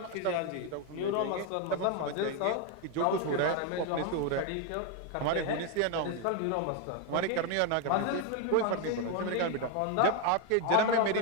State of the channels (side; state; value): both; different; correlation 0.01